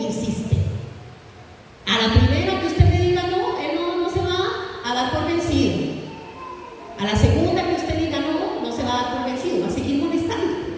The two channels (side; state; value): both; identical; correlation 1.00